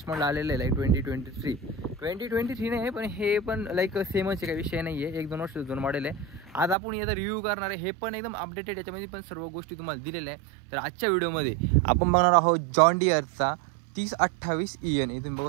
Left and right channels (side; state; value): left; drops out; at 6.8 s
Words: मॉडेल आलेलं आहे 2023 नाही, पण हे पण लाईक सेमच काही विषय नाही आहे. 1-2 वर्ष जुनं मॉडेल आहे. आज आपण याचा रिव्ह्यू करणार आहे. हे पण एकदम अपडेटेड, याच्यामध्ये पण सर्व गोष्टी तुम्हाला दिलेल्या आहे. तर आजच्या व्हिडिओमध्ये आपण बघणार आहोत जॉन डियरचा 3028 EN. इथून